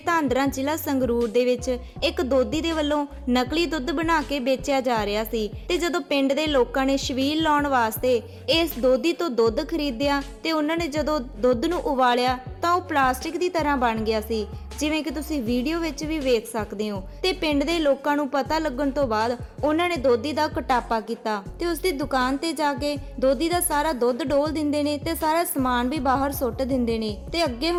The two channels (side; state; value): both; identical; correlation 1.00